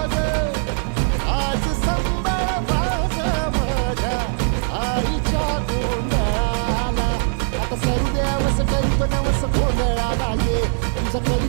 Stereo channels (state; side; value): silent; left; digital silence